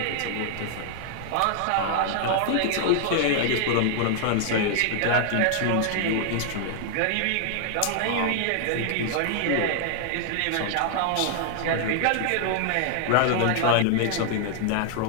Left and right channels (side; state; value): both; different; correlation 0.00